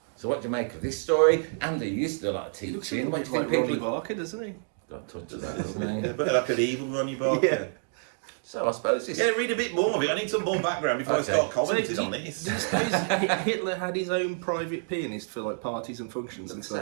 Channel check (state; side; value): silent; left; digital silence